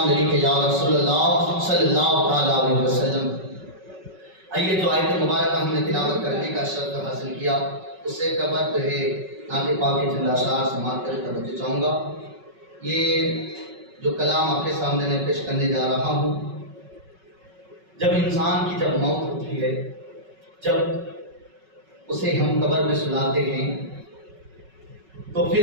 علیک یا رسول اللہ صلی اللہ علیہ وسلم۔ آئیے جو آیت مبارکہ ہم نے تلاوت کرنے کا شرف حاصل کیا اس سے قبل جو ہے نعت پاک کے چند اشعار سماعت کر توجہ چاہوں گا۔ یہ جو کلام آپ کے سامنے میں پیش کرنے جا رہا ہوں، جب انسان کی جب موت ہوتی ہے، جب اسے ہم قبر میں سلاتے ہیں تو پھر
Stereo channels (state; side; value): late; left; 5.3 ms